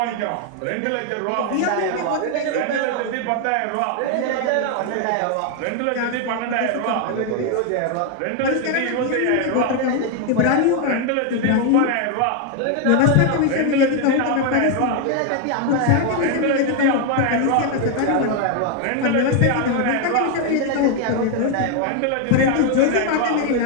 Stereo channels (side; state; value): both; different; correlation 0.01